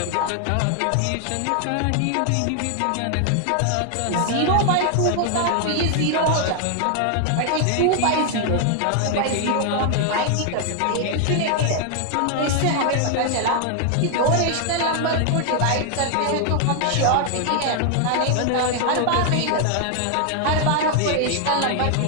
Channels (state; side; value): different; both; correlation 0.00